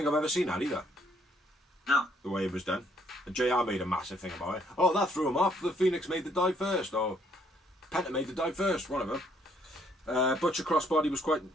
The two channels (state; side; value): normal; both; correlation 0.67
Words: I've ever seen that either. No. The way it was done. And JR made a massive thing about it. Oh, that threw him off. The Phoenix made the dive first, or Penta made the dive first, one of them. Butcher crossbody was